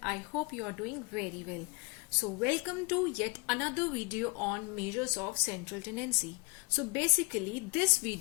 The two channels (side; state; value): right; quieter; 29.9 dB